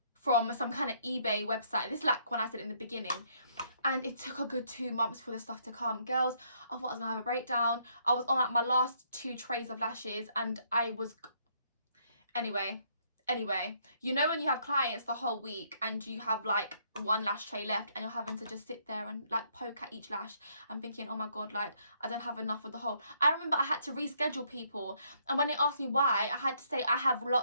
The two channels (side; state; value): both; inverted; correlation -0.69